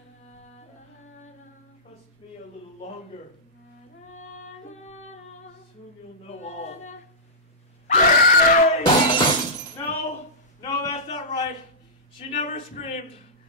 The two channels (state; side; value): normal; both; correlation -0.14